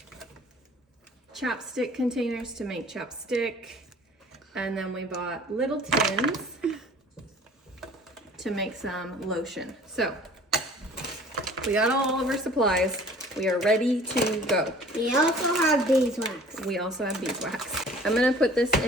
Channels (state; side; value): normal; both; correlation 0.49